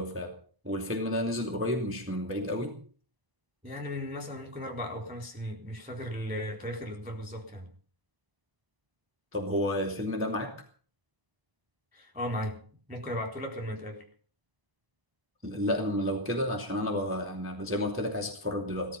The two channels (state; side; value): late; left; 1.0 ms